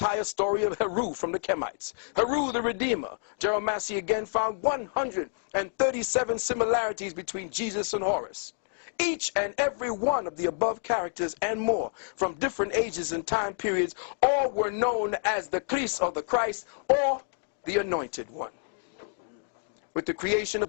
story of Heru from the Kemites. Heru the Redeemer. Gerald Massey again found 137 similarities between Jesus and Horus. Each and every one of the above characters and more, from different ages and time periods, all were known as the Christ or the Christ or the Anointed One. With the creation of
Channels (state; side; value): silent; right; digital silence